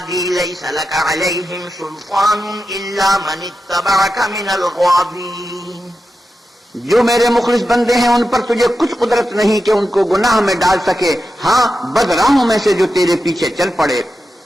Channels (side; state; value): both; normal; correlation 0.90